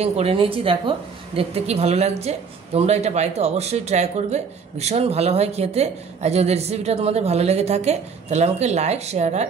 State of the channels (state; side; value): quieter; left; 5.7 dB